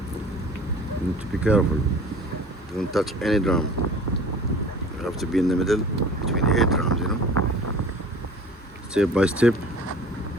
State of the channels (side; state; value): both; normal; correlation 0.44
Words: you need to be careful. Don't touch any drum. You have to be in the middle between the 8 drums, you know. Step by step.